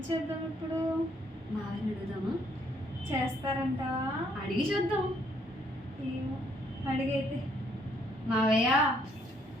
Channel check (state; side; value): normal; both; correlation 0.68